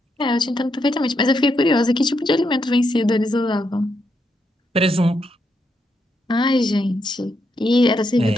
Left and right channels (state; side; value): normal; both; correlation 0.80